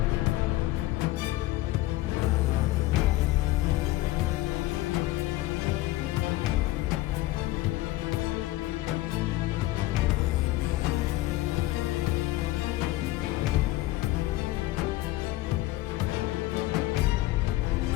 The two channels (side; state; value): right; quieter; 17.2 dB